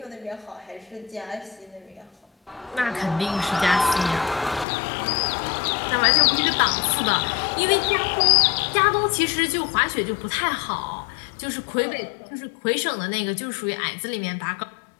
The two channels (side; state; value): right; drops out; at 4.7 s